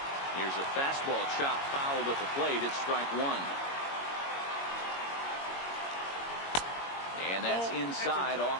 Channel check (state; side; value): late; right; 22 ms